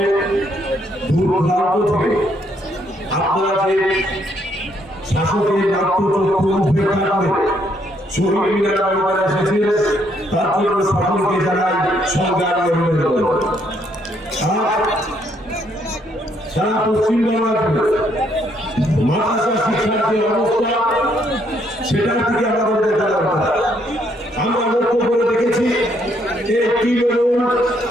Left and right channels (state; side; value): normal; both; correlation 0.71